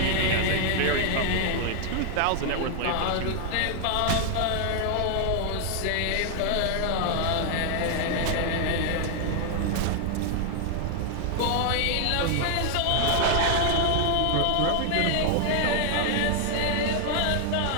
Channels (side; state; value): both; different; correlation 0.00